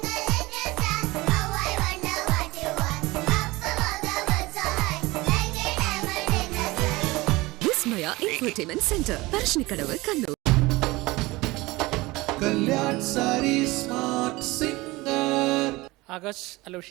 Vismaya entertainment centre, Parassinikkadavu, Kannur. Kalyan saris smart singer. Akash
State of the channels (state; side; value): quieter; left; 21.3 dB